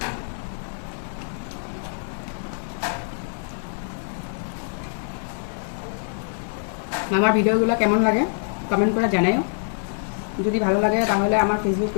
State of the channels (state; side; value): silent; right; digital silence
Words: আমার ভিডিওগুলো কেমন লাগে কমেন্ট করে জানাও। যদি ভালো লাগে তাহলে আমার ফেসবুক